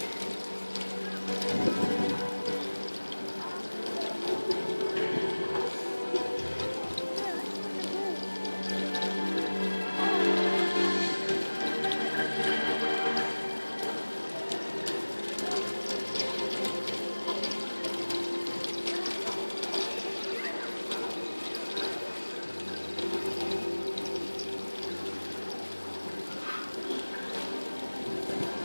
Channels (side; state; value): both; inverted; correlation -1.00